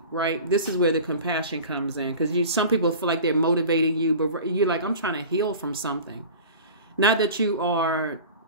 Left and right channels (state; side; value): inverted; both; correlation -0.38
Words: right? This is where the compassion comes in, because some people feel like they're motivating you, but you're like, I'm trying to heal from something. Not that you are,